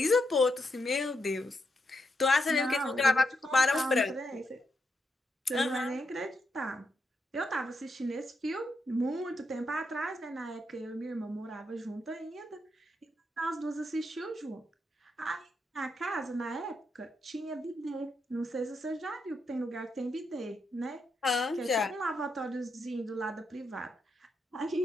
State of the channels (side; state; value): both; normal; correlation 0.82